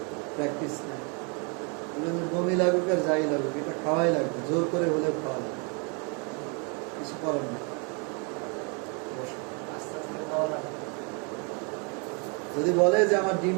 প্র্যাকটিস নাই। বমি লাগুক আর যাই লাগুক, এটা খাওয়াই লাগবে, জোর করে হলেও খাওয়া লাগবে, কিছু করার নেই। আস্তে আস্তে খাওয়া লাগে। যদি বলে যে আমার ডিম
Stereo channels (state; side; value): quieter; left; 35.0 dB